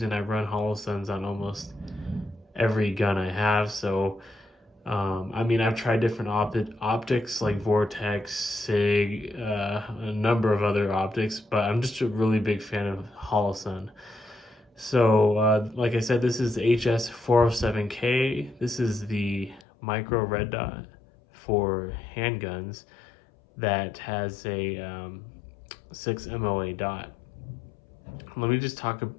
and I run Holosuns on almost every gun I have. So I mean, I've tried different optics like Vortex, Sig, a number of other optics, but I'm just a really big fan of Holosun. So like I said, this is the HS407K. This is the micro red dot for handguns that has a 6 MOA dot. Let me just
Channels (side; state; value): right; drops out; at 19.6 s